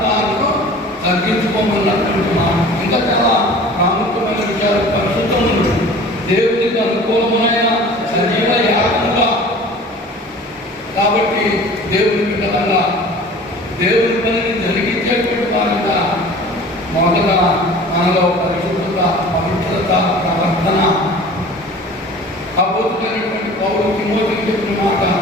తాను తగ్గించుకోమన్నటువంటి మాట. ఇంకా చాలా ప్రాముఖ్యమైన విషయాలు. పరిశుద్ధములు దేవునికి అనుకూలమైన సజీవ యాగముగా, కాబట్టి దేవుని బిడ్డలంగా దేవుని పనిని జరిగించేటువంటి వారంగా మొదట మనలో పరిశుద్ధత, పవిత్రత, ప్రవర్తన. అద్భుతమైనటువంటి పౌలు తిమోతికి చెప్పిన మాట,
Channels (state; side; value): normal; both; correlation 0.43